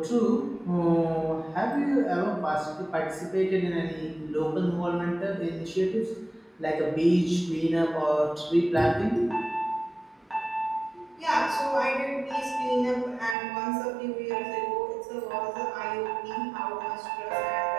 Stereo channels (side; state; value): left; drops out; at 13.4 s